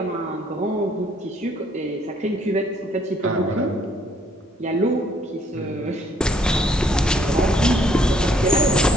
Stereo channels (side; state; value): both; normal; correlation 0.64